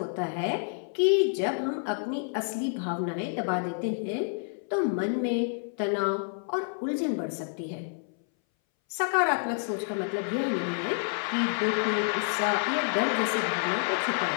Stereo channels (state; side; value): silent; right; 59 dB below the other